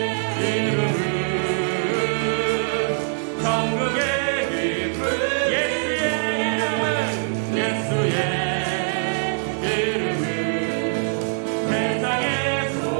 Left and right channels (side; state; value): left; silent; 63 dB below the other